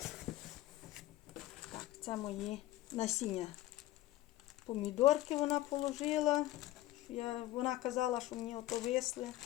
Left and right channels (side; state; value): right; quieter; 15.8 dB